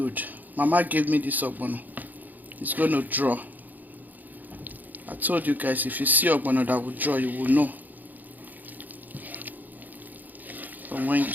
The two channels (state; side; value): late; left; 0.084 ms